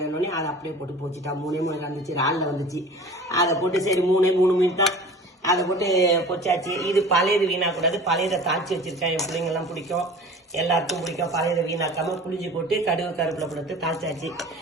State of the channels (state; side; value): normal; both; correlation 0.41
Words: அதை அப்படியே போட்டு போச்சுட்டா. 3 வந்துச்சு, இறாலில் வந்துச்சு. அதை போட்டு சரி 3 மீன் தான் அதை போட்டு பொச்சாச்சு. இது பழையது வீணாக்கூடாது, பழையதை தாளிச்சு வச்சிருக்கேன். என் பிள்ளைங்கெல்லாம் பிடிக்கும், எல்லாருக்கும் பிடிக்கும். பழையதை வீணாக்காம புளிஞ்சு போட்டு கருவேப்பிலை போட்டு தாளிச்சாச்சு.